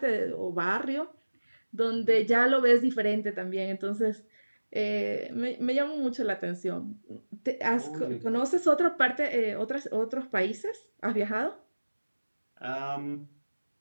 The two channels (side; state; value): both; inverted; correlation -1.00